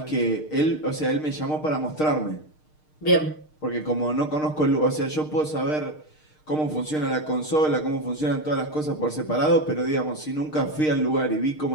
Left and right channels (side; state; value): right; late; 6.5 ms